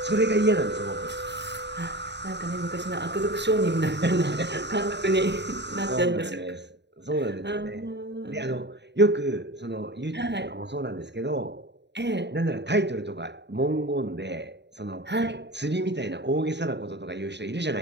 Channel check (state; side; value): late; left; 0.50 ms